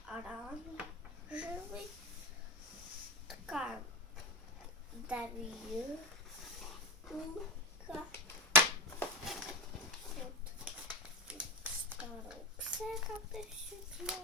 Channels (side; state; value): both; normal; correlation 0.17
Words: оранжевый. Такая давилка. Вот инструкция, как это все